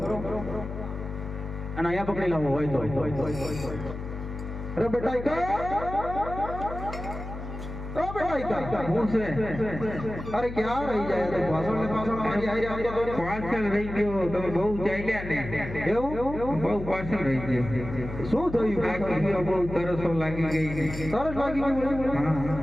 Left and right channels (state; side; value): noise; left; hum, 9 dB below the sound